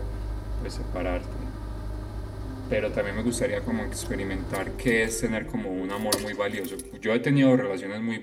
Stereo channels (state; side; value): identical; both; correlation 1.00